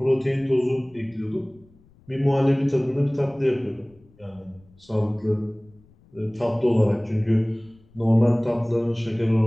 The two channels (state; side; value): noise; left; rumble, 29 dB below the sound